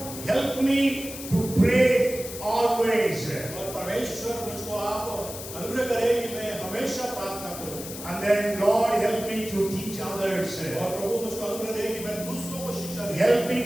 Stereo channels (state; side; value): noise; left; hiss, 10 dB below the sound